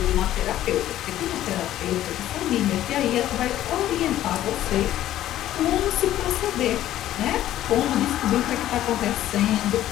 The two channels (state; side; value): quieter; right; 13.1 dB